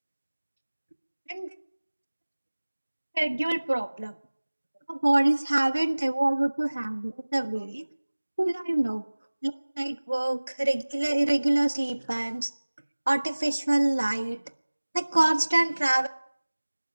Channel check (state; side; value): inverted; both; correlation -1.00